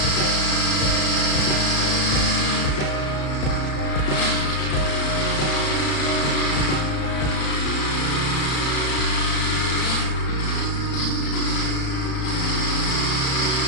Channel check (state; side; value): late; right; 35 ms